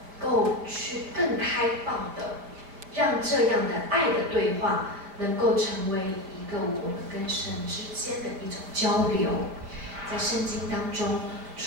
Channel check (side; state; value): left; late; 5.1 ms